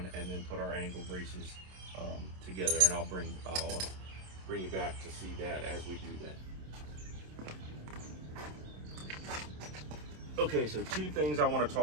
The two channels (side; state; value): left; late; 27 ms